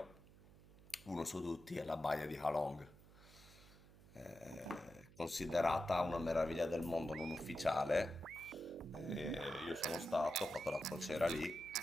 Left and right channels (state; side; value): noise; right; hum, 21 dB below the sound